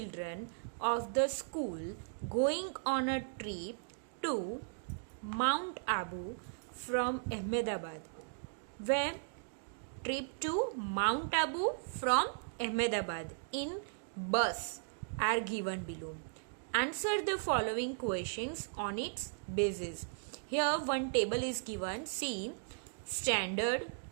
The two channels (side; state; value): left; silent; digital silence